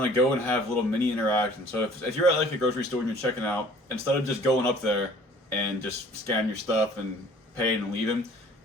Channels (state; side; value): normal; both; correlation 0.52